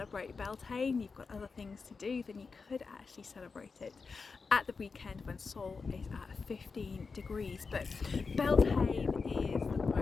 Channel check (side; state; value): right; quieter; 4.7 dB